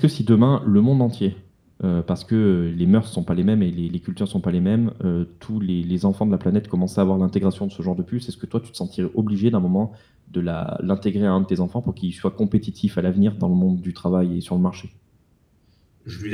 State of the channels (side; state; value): both; identical; correlation 1.00